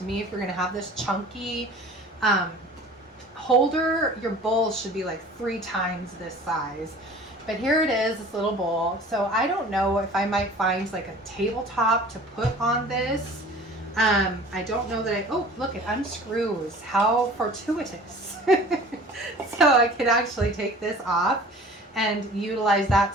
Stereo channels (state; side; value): normal; both; correlation 0.44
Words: me, if you're going to have this chunky holder, your bowl should be like 3 times this size. But here it is, this little bowl. So I don't know if I might find like a tabletop to put on this. I don't know that oh, look, it unscrews. How fortuitous. So I could actually take this off and utilize that